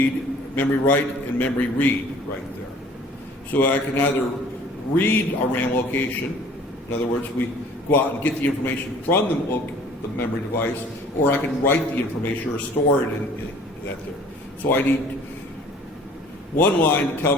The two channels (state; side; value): normal; both; correlation 0.51